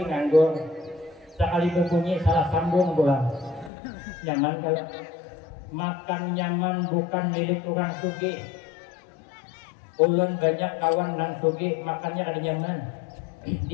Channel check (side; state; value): right; drops out; at 3.7 s